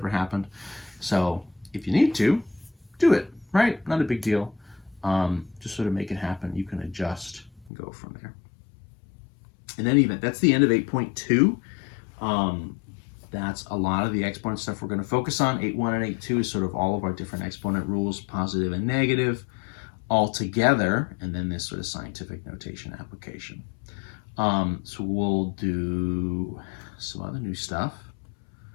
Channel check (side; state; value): right; drops out; at 7.7 s